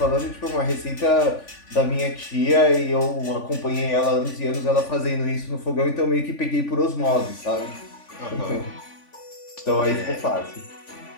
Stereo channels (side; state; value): right; late; 3.5 ms